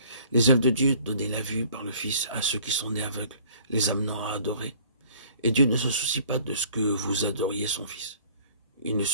Les œuvres de Dieu, donner la vue par le Fils à ceux qui sont nés aveugles, les amenant à adorer. Et Dieu ne se soucie pas de ce que vous adoriez son Fils. Il ne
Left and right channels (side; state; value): both; inverted; correlation -0.53